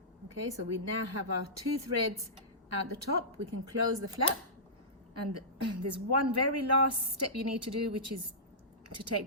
Okay, so we now have our 2 threads out the top. We can close the flap, and there's one very last step you need to do, which is to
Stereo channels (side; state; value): both; normal; correlation -0.19